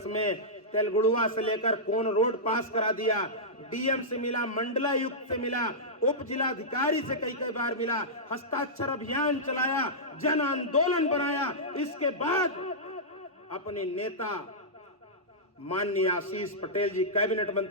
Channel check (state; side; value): normal; both; correlation -0.13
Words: में तेलगुड़ुआ से लेकर कोन रोड पास करा दिया। डीएम से मिला, मंडलायुक्त से मिला, उप जिलाधिकारी से कई कई बार मिला, हस्ताक्षर अभियान चलाया, जन आंदोलन बनाया। इसके बाद अपने नेता माननीय आशीष पटेल जी, कैबिनेट